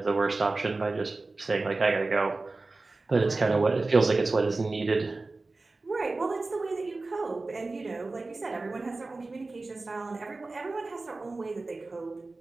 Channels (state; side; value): quieter; left; 3.4 dB